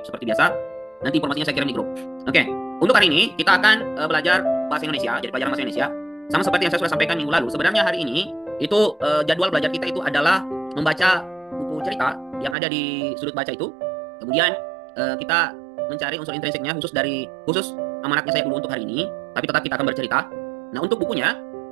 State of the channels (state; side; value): drops out; left; at 12.6 s